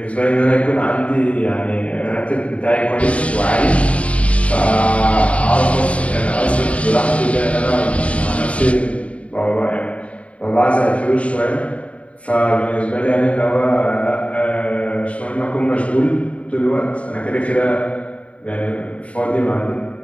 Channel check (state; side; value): late; right; 0.064 ms